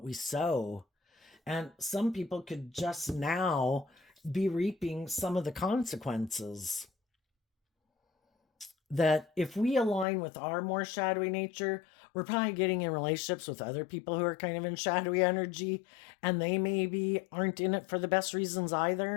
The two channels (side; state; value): right; drops out; at 10.1 s